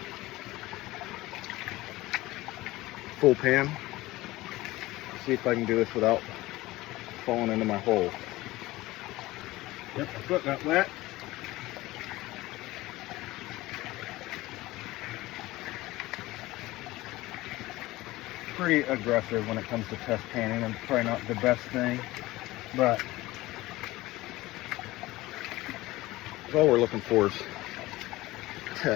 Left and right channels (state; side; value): quieter; right; 18.7 dB